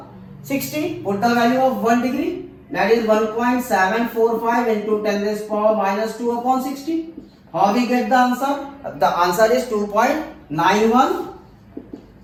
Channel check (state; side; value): identical; both; correlation 1.00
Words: 60. Put the value of 1 degree, that is 1.745 into 10 raised power minus 2 upon 60. How we get the answer? The answer is 2.91